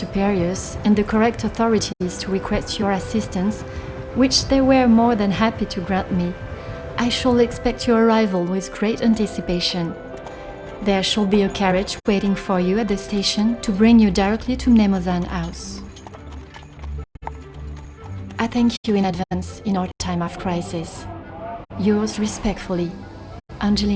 and the correct authorities to request your assistance, which they were more than happy to grant me, I shall expect your arrival with great anticipation. There shall be a carriage waiting for you at the station to bring you directly to Mnemosyne House. I thank you in advance in our time of crisis. Yours respectfully,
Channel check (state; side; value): identical; both; correlation 1.00